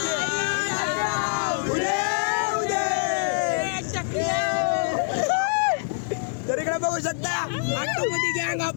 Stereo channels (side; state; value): right; silent; digital silence